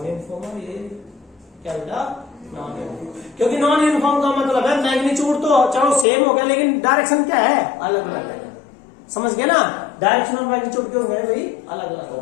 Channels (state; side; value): drops out; right; at 6.1 s